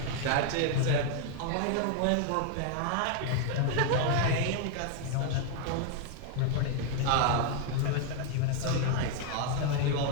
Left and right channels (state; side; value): different; both; correlation 0.00